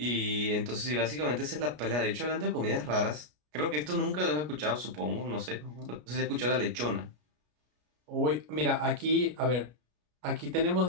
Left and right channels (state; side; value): late; left; 33 ms